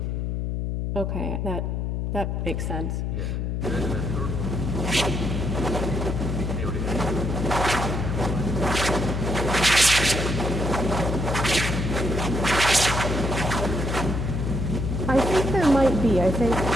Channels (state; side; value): noise; left; hum, 1 dB below the sound